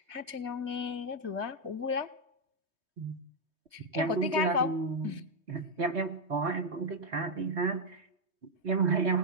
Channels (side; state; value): left; late; 3.2 ms